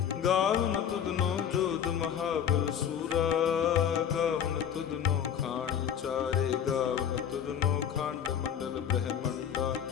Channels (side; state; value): right; quieter; 8.8 dB